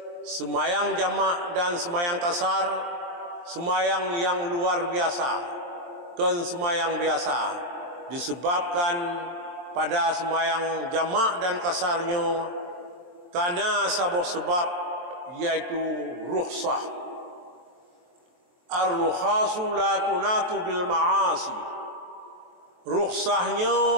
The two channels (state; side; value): late; left; 23 ms